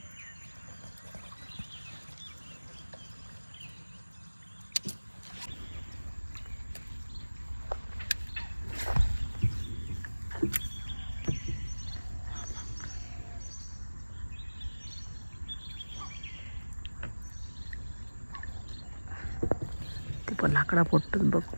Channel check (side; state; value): both; inverted; correlation -1.00